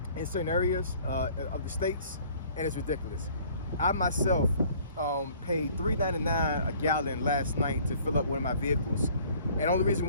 in certain areas of the states, and it's ridiculous. I myself paid $3.99 a gallon last night to fill up one of my vehicles, and the only reason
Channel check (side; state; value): both; inverted; correlation -0.55